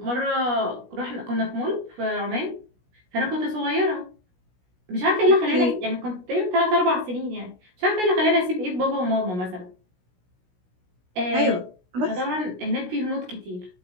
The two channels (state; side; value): late; left; 16 ms